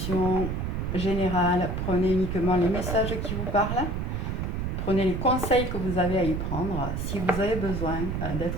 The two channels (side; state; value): right; noise; rumble, 2 dB below the sound